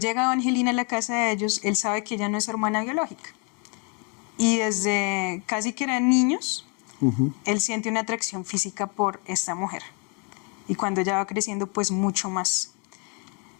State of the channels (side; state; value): right; quieter; 35.7 dB